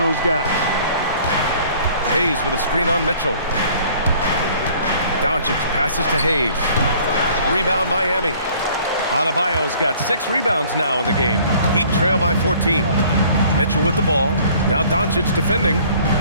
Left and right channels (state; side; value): inverted; both; correlation -0.54